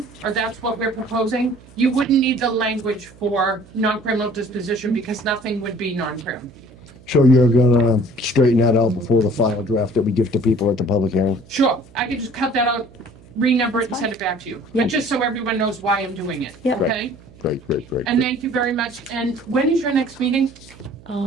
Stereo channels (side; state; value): right; noise; hum, 24 dB below the sound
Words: or that's what we're proposing, you wouldn't need the language for non-criminal disposition because nothing would be non-criminal. So you're gonna straighten that out before the final draft that we give to people at the public hearing? Sure, I could just cut that out, renumber it and send it back to you. But just so everyone knows why I'm doing it, Yeah. okay? Great. And thank you very much. And when is your next meeting?